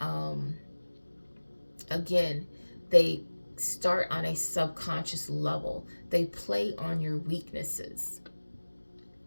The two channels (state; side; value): inverted; both; correlation -1.00